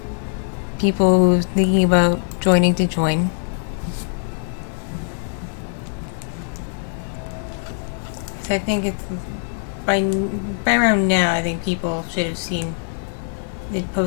people who's thinking about joining to join. So I think it's by around now. I think people should have seen it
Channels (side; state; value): right; silent; digital silence